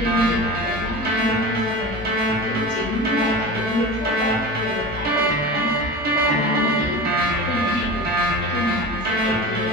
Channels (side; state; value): both; normal; correlation 0.31